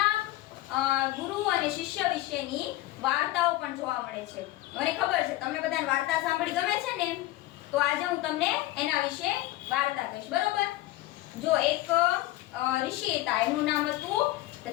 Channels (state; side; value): quieter; right; 16.9 dB